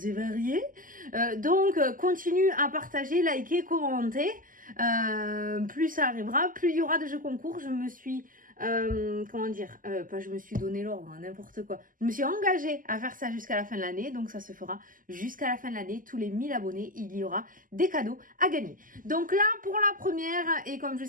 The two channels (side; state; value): left; late; 0.40 ms